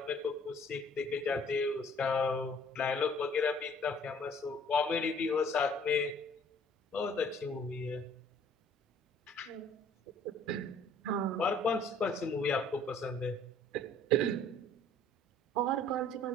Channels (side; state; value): both; normal; correlation 0.56